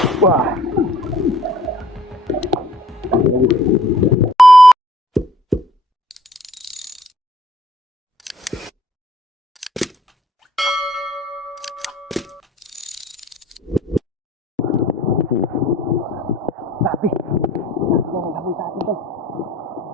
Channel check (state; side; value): normal; both; correlation 0.58